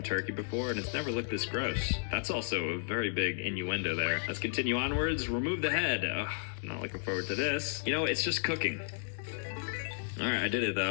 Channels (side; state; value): right; silent; digital silence